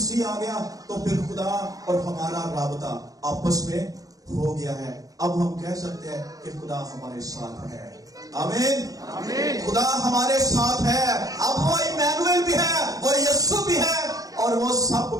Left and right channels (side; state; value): left; late; 0.17 ms